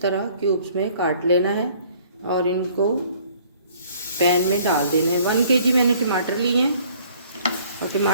तरह क्यूब्स में काट लेना है और इनको पैन में डाल देने हैं। 1 kg मैंने टमाटर लिए हैं और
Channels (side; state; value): both; inverted; correlation -0.57